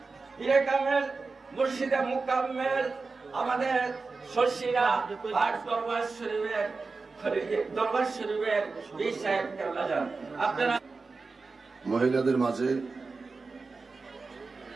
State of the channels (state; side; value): quieter; left; 4.1 dB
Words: পীরে কামেল, মুর্শিদে মুকাম্মেল, আমাদের শর্ষিরা আর দরবার শরীফের পীর সাহেব কেবলাজান। আপনারা মহিলাদের মাঝে